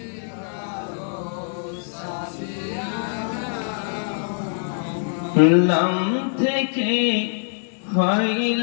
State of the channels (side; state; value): right; silent; digital silence